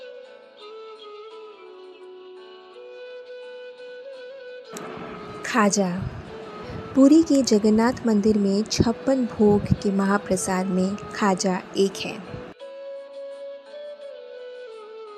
खाजा। पुरी के जगन्नाथ मंदिर में 56 भोग के महाप्रसाद में खाजा एक है।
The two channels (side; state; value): both; identical; correlation 1.00